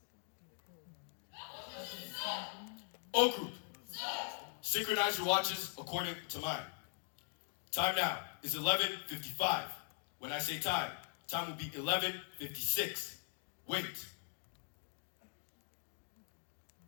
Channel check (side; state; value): right; silent; digital silence